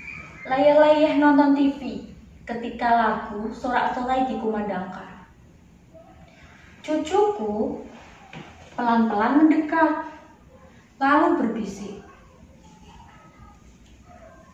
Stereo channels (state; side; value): identical; both; correlation 1.00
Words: layah-layah nonton TV ketika lagu Sorak-Sorai dikumandangkan. Cucuku pelan-pelan mendekat, lalu berbisik,